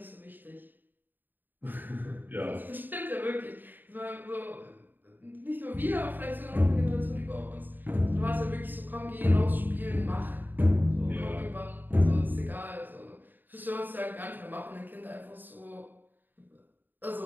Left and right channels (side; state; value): left; late; 0.090 ms